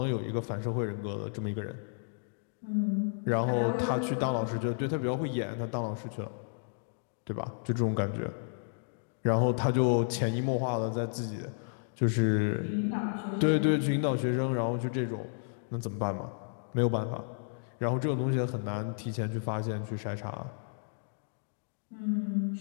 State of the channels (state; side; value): silent; right; digital silence